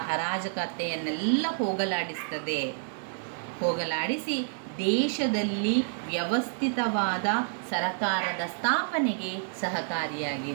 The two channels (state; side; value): silent; left; digital silence